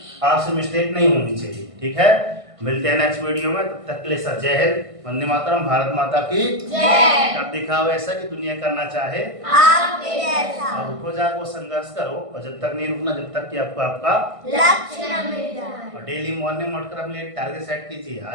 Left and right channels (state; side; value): late; left; 1.5 ms